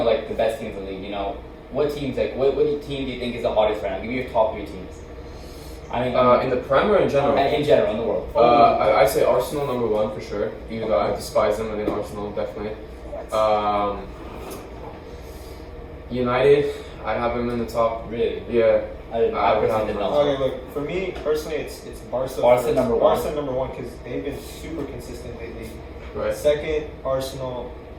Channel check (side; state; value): both; identical; correlation 1.00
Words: like the best teams in the league, you know, what teams like what team do you think is the hottest right now? Give me your top 3 teams. I mean, In the Prem or in general? in general in the world. I'd say Arsenal number 1 for sure. Even though I despise them, I think Arsenal definitely. United, I have them in the top. Really? Yeah. I would personally have did them. not. Okay, look, for me personally, it's Barca. Barca first. number 1. Barca number 1 because they've been super consistent lately. Right. Second, Arsenal.